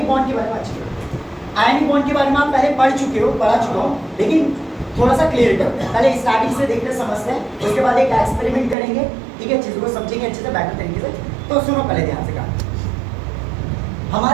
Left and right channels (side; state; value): left; drops out; at 8.8 s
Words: बॉन्ड के बारे में अच्छे आयनिक बॉन्ड के बारे में आप पहले पढ़ चुके हो, लेकिन थोड़ा सा क्लियर करते हैं। पहले स्टार्टिंग से देखते समझते हैं, उसके बाद एक एक्सपेरिमेंट करेंगे, ठीक है, चीज़ों को समझेंगे अच्छे से, बेटर तरीके से। तो सुनो पहले ध्यान से कहा,